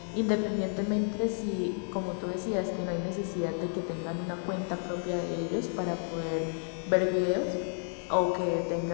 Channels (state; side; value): silent; right; 57 dB below the other